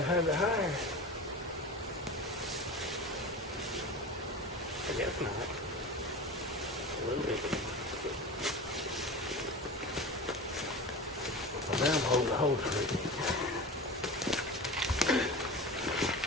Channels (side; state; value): both; normal; correlation 0.31